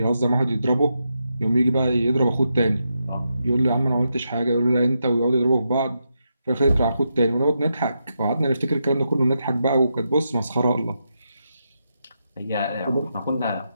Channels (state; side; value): inverted; both; correlation -0.84